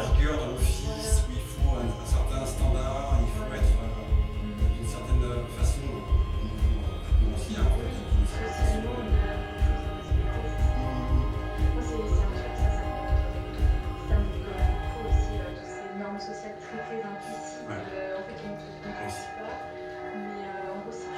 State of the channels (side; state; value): both; identical; correlation 1.00